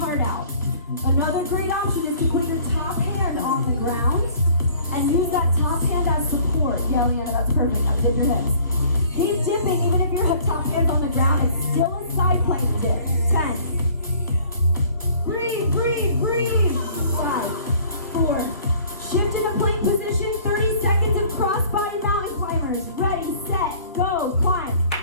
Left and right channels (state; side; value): inverted; both; correlation -0.53